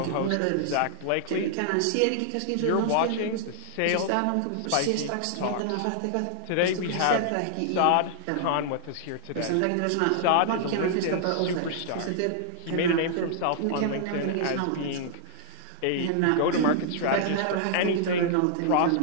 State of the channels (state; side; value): different; both; correlation -0.01